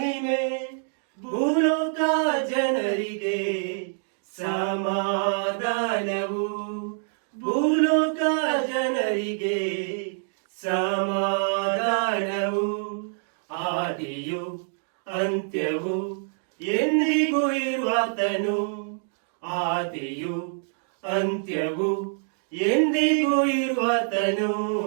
ಭೂಲೋಕ ಜನರಿಗೆ ಸಮಾಧಾನವು, ಭೂಲೋಕ ಜನರಿಗೆ ಸಮಾಧಾನವು. ಆದಿಯು ಅಂತ್ಯವು ಎಂದಿಗೂ ಇರುವಾತನು, ಆದಿಯು ಅಂತ್ಯವು ಎಂದಿಗೂ ಇರುವಾತನು.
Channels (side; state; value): left; silent; digital silence